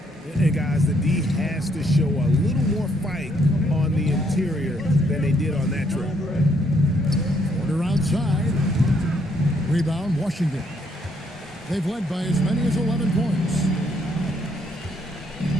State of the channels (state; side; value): normal; both; correlation 0.71